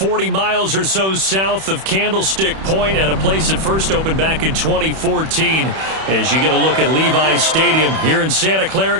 miles or so south of Candlestick Point at a place that first opened back in 2014 as you get a look at Levi's Stadium here in Santa Clara,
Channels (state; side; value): late; left; 31 ms